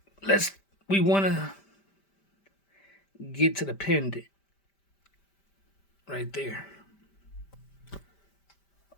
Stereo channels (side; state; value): right; late; 5.1 ms